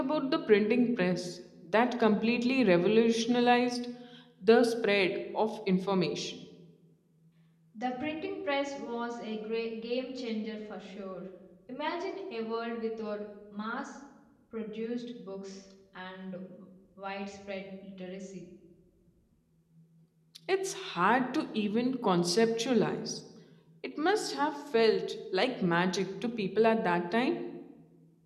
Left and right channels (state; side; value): identical; both; correlation 1.00